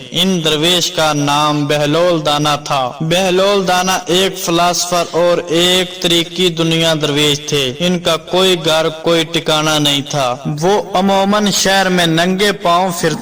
ان درویش کا نام بہلول دانا تھا۔ بہلول دانا ایک فلاسفر اور ایک طریقی دنیا درویش تھے۔ ان کا کوئی گھر کوئی ٹھکانہ نہیں تھا۔ وہ عموماً شہر میں ننگے پاؤں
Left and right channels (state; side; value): identical; both; correlation 1.00